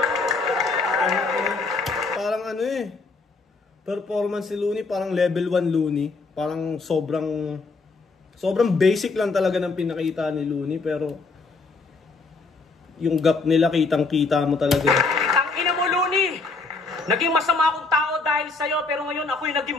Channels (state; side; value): quieter; right; 3.9 dB